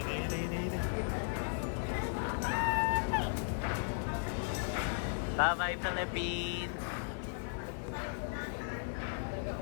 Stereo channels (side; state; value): right; silent; 54 dB below the other